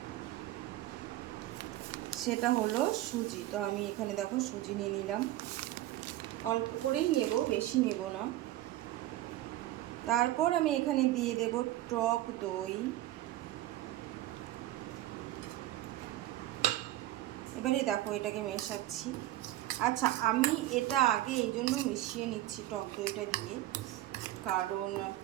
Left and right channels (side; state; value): left; quieter; 15.3 dB